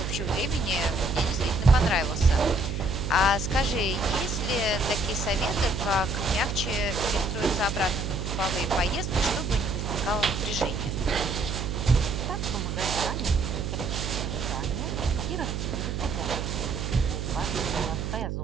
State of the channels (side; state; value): right; noise; hum, 3 dB below the sound